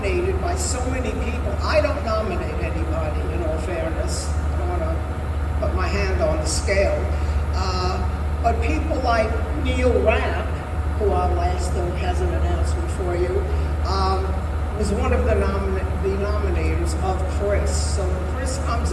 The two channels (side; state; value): both; identical; correlation 1.00